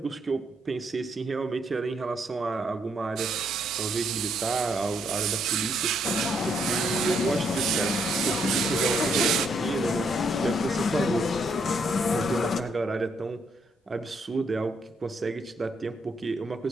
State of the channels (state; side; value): normal; both; correlation 0.74